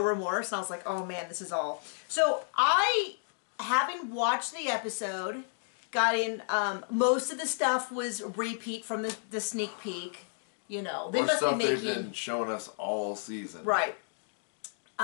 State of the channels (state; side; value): silent; right; digital silence